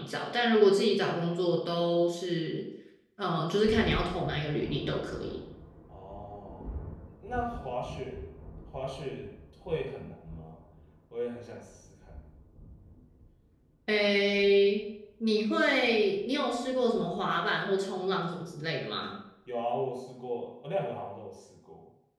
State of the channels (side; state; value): both; identical; correlation 1.00